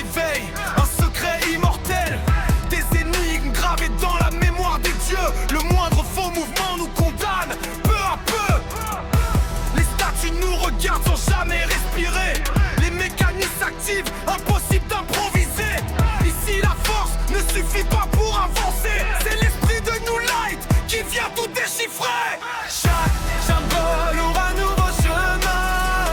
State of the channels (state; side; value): identical; both; correlation 1.00